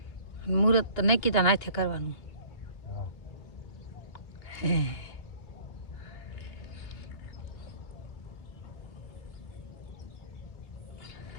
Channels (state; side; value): late; right; 2.8 ms